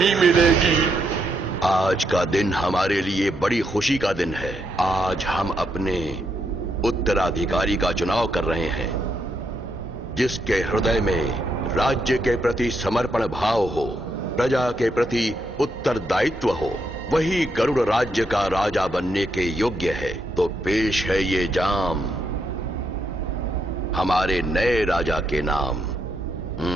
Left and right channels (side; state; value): both; normal; correlation 0.79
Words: मिलेगी। आज का दिन हमारे लिए बड़ी खुशी का दिन है। आज हम अपने उत्तराधिकारी का चुनाव कर रहे हैं, जिसके हृदय में राज्य के प्रति समर्पण भाव हो, प्रजा के प्रति उत्तरदायित्व हो। वही गरुड़ राज्य का राजा बनने के योग्य है। तो पेश है ये जाम हमारे नए राजा के नाम।